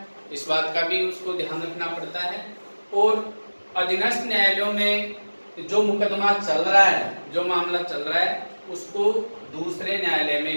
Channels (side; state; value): both; inverted; correlation -1.00